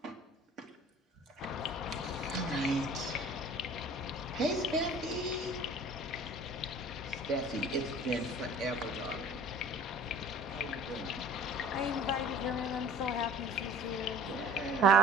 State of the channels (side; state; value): both; normal; correlation 0.47